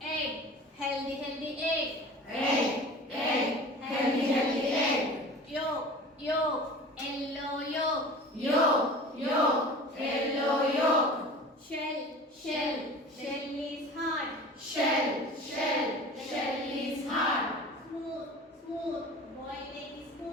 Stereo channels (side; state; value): both; normal; correlation 0.39